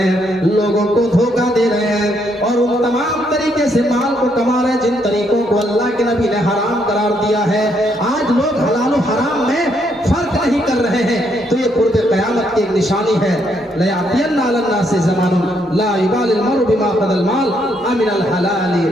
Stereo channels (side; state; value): both; normal; correlation 0.74